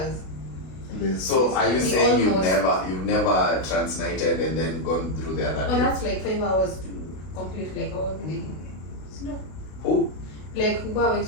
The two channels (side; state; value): right; late; 32 ms